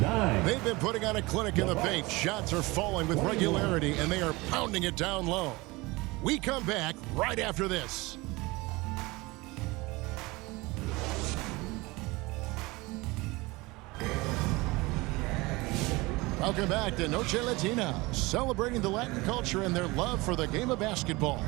They've been putting on a clinic in the paint. Shots are falling with regularity, and they are pounding it down low. We come back right after this. Welcome back to Noche Latina, celebrating the Latin culture and their love for the game of basketball.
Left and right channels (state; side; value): quieter; left; 22.8 dB